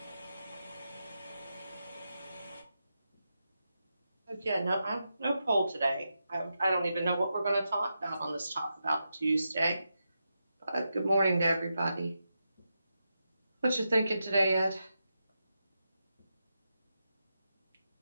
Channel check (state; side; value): inverted; both; correlation -0.87